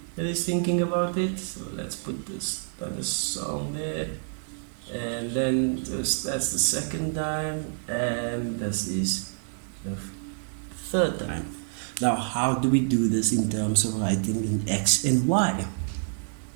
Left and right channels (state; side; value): silent; left; digital silence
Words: that he's thinking about it. So let's put this on the song there. And then that's the second time, and this is the third time. Now, how do we do this in terms of writing in X and Y?